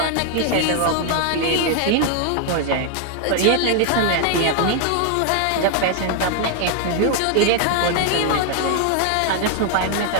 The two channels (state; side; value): different; both; correlation 0.00